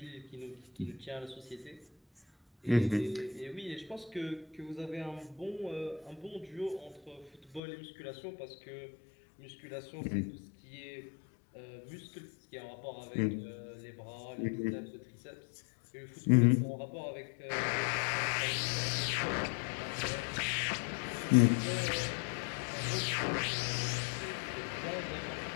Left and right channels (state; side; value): drops out; right; at 7.6 s